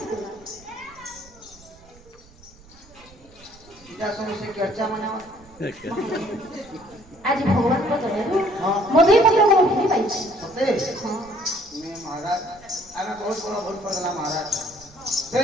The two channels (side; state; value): right; noise; rumble, 24 dB below the sound